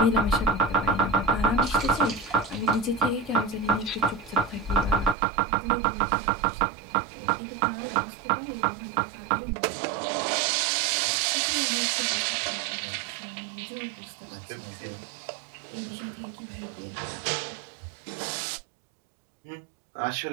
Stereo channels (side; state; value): left; drops out; at 5.2 s